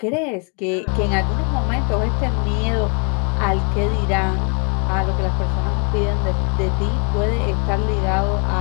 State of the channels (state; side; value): quieter; right; 36.5 dB